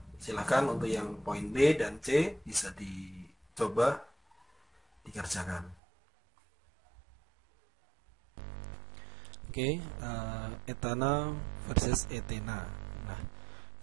Silahkan untuk yang poin B dan C bisa dicoba dikerjakan. Oke, etana versus etena. Nah,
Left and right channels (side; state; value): left; drops out; at 5.8 s